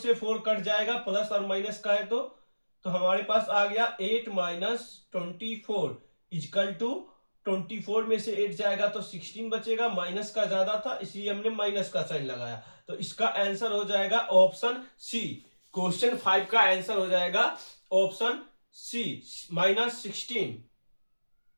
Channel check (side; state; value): both; inverted; correlation -1.00